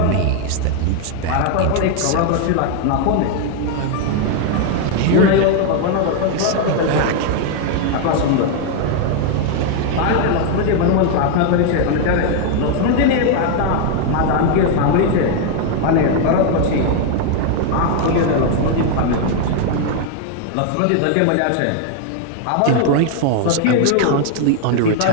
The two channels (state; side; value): different; both; correlation 0.00